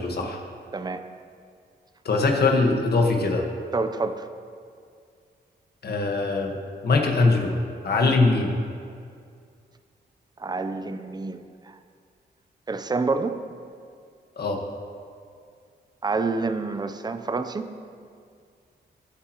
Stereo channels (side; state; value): both; normal; correlation 0.65